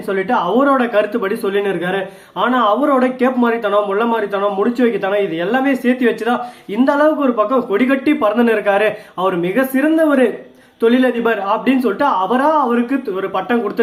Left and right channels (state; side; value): identical; both; correlation 1.00